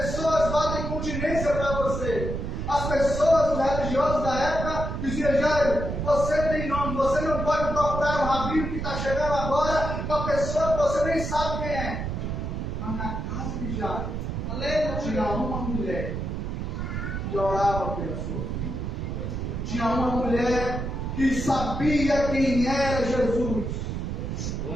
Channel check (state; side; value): noise; right; rumble, 3 dB below the sound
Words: batem continência para você. As pessoas, os religiosos da época, diziam: Jairo, você tem nome, você não pode procurar um rabino que está chegando agora, uma pessoa que você nem sabe quem é. Mas na casa de Jairo, tinha uma mulher que orava pela sua filha. Tinha uma mulher que sabia quem era Jesus.